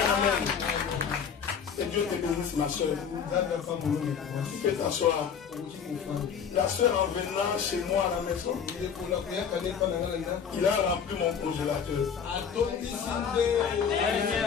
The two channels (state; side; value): quieter; right; 7.1 dB